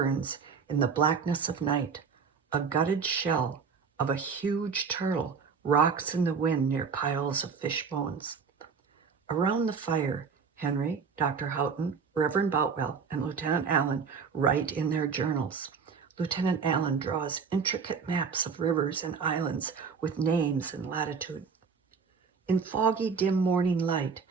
in the blackness of night. A gutted shell of a huge turtle rocks in the wind near piles of fish bones. Around the fire, Henry, Dr. Houghton, Reverend Boutwell, and Lieutenant Allen write in their journals. Lieutenant Allen draws intricate maps of rivers and islands with names and latitude. In foggy, dim morning light,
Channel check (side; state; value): left; quieter; 5.8 dB